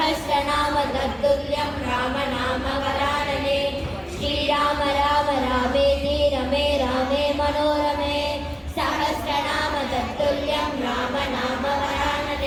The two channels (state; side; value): identical; both; correlation 1.00